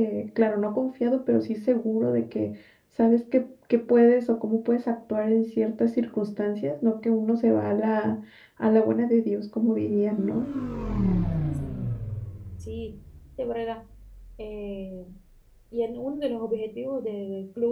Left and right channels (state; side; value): identical; both; correlation 1.00